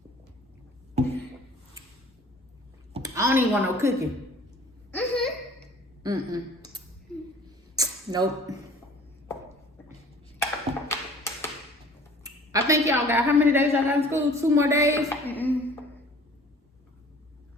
I don't even want no cooking. Nope. I think y'all got, how many days y'all got in school? 2 more days? I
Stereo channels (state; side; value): normal; both; correlation 0.49